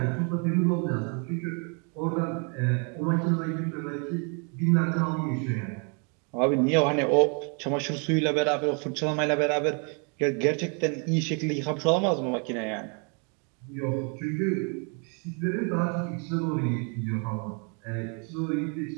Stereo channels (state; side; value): quieter; left; 37.1 dB